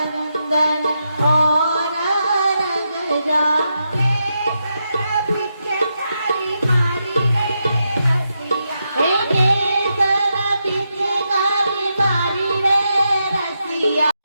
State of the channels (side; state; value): both; inverted; correlation -0.84